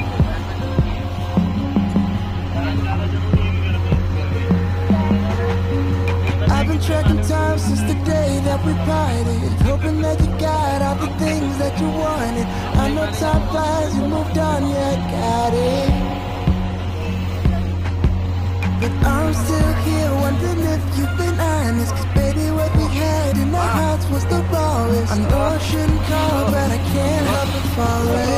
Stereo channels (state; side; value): identical; both; correlation 1.00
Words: tracking time since the day that we parted, hoping that you got all the things that you wanted. I know time flies, you moved on, yeah, I got it. But I'm still here wondering if you've been honest, 'cause baby what we had in our hearts was the rawest. I know I shouldn't call, but I can't help but